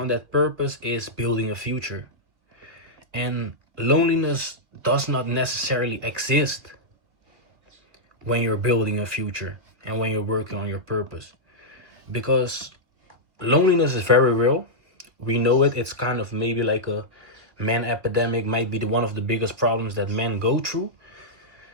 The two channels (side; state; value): left; late; 2.4 ms